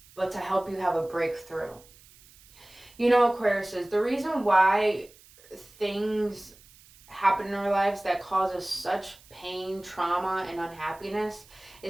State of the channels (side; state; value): right; noise; hiss, 25 dB below the sound